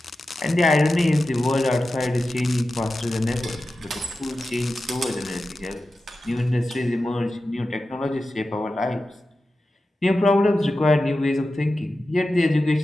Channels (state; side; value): normal; both; correlation 0.93